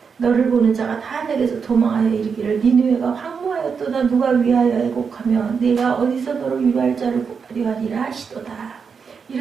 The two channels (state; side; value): quieter; left; 5.9 dB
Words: 너를 보는 자가 다 내게서 도망하여 이르기를 니느웨가 황무하였도다 누가 위하여 애곡하며 내가 어디서 너를 위로할 자를 구하리라 하시도다.